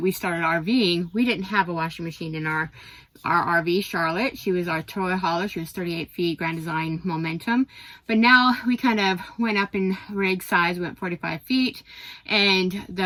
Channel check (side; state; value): both; identical; correlation 1.00